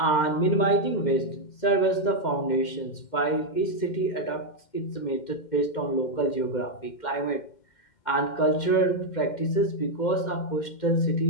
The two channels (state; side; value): late; right; 2.1 ms